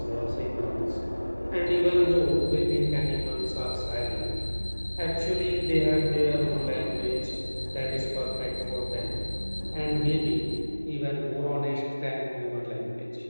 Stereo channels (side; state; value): both; inverted; correlation -1.00